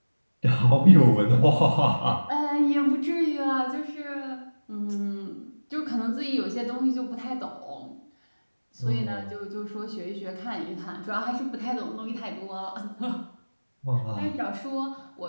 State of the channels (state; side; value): inverted; both; correlation -1.00